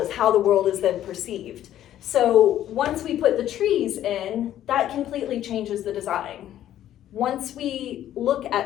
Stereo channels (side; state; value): right; quieter; 12.0 dB